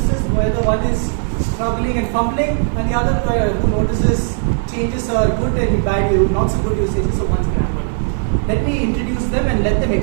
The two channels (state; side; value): silent; left; 68 dB below the other